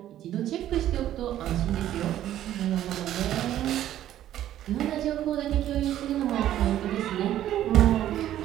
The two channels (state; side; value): quieter; left; 12.3 dB